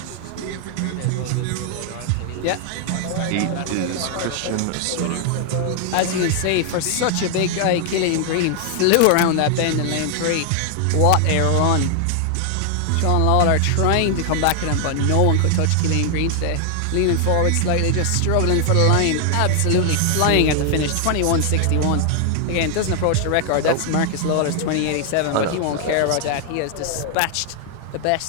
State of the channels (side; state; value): both; different; correlation 0.00